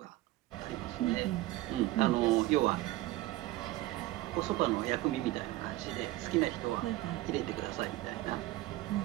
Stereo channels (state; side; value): quieter; left; 17.4 dB